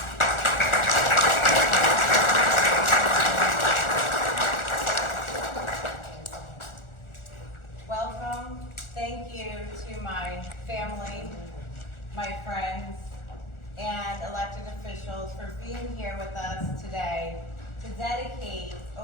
Welcome. Thank you to my family, my friends, and elected officials for being here with us today to dedicate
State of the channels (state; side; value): late; right; 1.4 ms